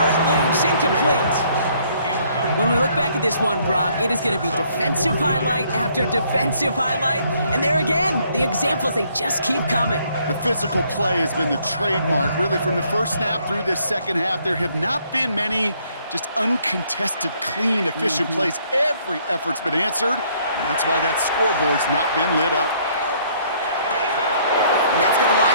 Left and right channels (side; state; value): both; inverted; correlation -0.65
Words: it loose. Incomplete. When we look back at this one, Brock, it is going to be defensive highlight after defensive highlight. And there again, the examples, they just keep coming. The physical play has been the trademark. Really, from the first snap through this second half, there have not been many just uncontested, clean, efficient plays. Every effort's been answered, and that's why that scoreboard's not been lit up. And that's going to